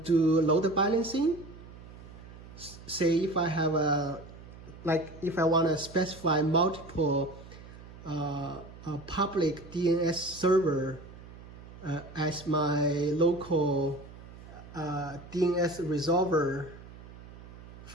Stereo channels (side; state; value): right; noise; hum, 17 dB below the sound